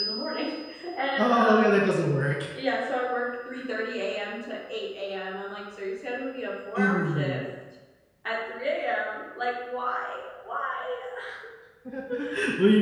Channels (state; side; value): identical; both; correlation 1.00